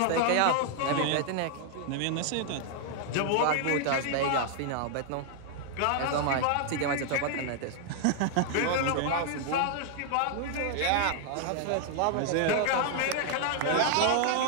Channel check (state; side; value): different; both; correlation 0.00